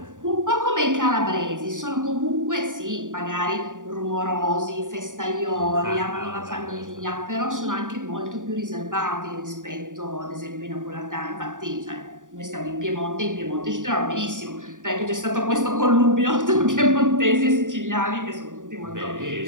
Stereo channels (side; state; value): left; late; 0.88 ms